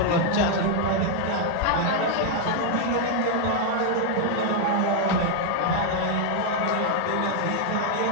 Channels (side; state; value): both; different; correlation 0.00